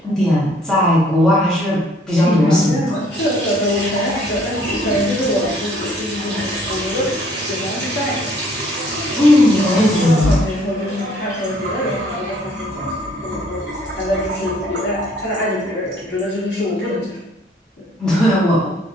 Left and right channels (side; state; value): both; normal; correlation 0.61